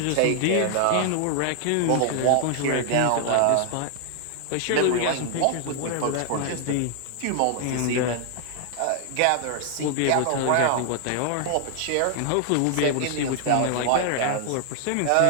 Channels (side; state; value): both; different; correlation 0.00